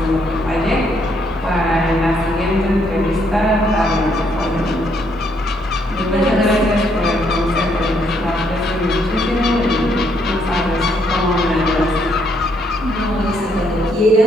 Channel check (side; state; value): both; normal; correlation 0.72